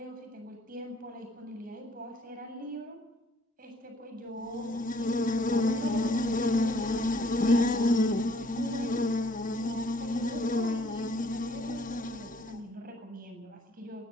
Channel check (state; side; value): normal; both; correlation 0.62